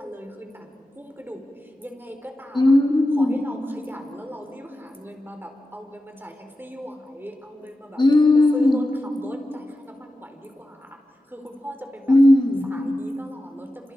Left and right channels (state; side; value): normal; both; correlation 0.92